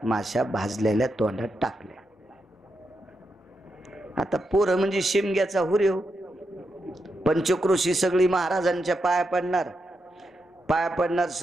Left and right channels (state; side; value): normal; both; correlation 0.85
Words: माश्या भाजलेल्या तोंडात टाकल्या. आता पोरं म्हणजे शिमग्याचा हुरेव. पंचक्रोशी सगळी महाराजांच्या पाया पडणार. पाया पडणार